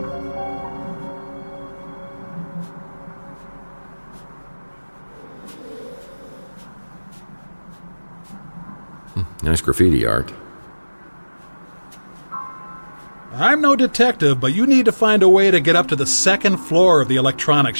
Nice graffiti art. I'm no detective, but you need to find a way to get up to the second floor of the electronics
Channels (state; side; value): inverted; both; correlation -1.00